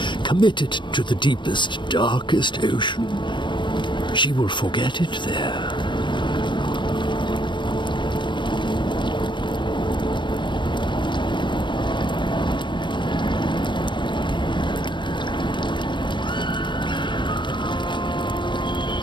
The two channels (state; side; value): late; right; 0.23 ms